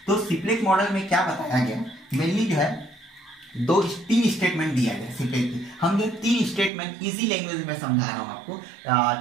तो सिप्लेक मॉडल में क्या बताया गया, मेनली जो है तीन स्टेटमेंट दिया गया सिप्लेक की। हम जो 3 स्टेटमेंट इजी लैंग्वेज में समझा रहा हूँ आपको।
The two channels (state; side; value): drops out; left; at 6.7 s